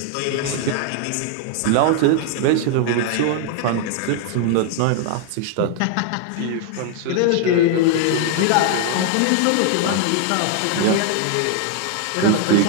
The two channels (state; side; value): different; both; correlation 0.00